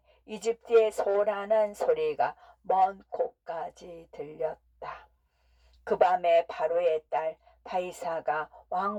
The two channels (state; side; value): identical; both; correlation 1.00